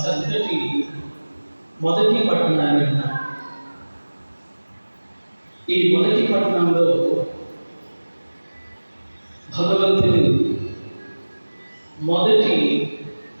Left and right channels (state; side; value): inverted; both; correlation -1.00